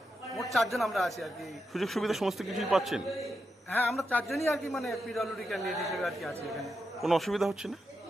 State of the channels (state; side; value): normal; both; correlation 0.86